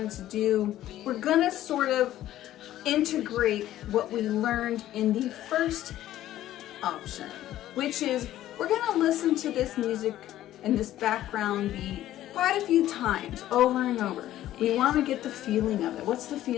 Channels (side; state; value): right; quieter; 13.4 dB